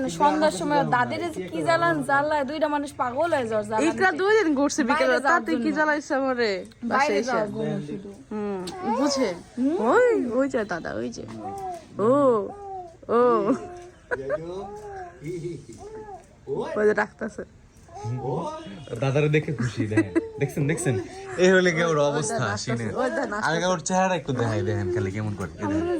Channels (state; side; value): identical; both; correlation 1.00